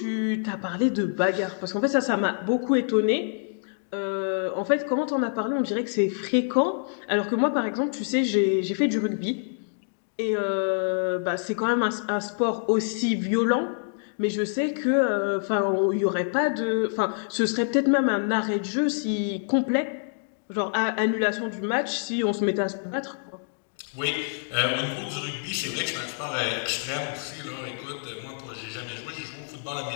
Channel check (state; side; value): silent; right; digital silence